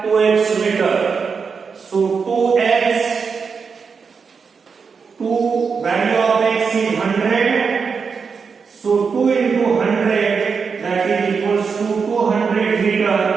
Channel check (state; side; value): quieter; left; 5.6 dB